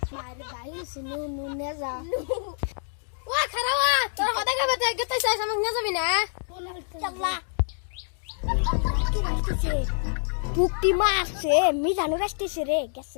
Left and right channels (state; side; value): silent; right; digital silence